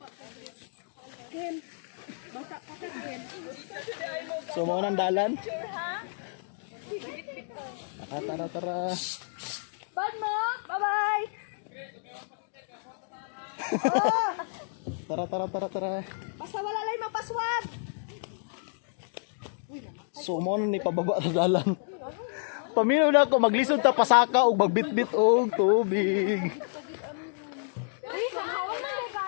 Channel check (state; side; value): silent; right; digital silence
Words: So, mo nang dalan. Tara. Bad mo. Bye-bye. Tara. Basta wala lang mapaswad. So mo na ni pababa sa dalan. Paminaw na ako maglisod ta pasaka og magbitbit og tubig. Ay, kahawan na